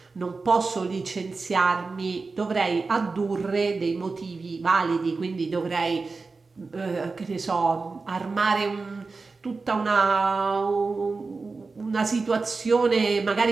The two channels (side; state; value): left; quieter; 4.1 dB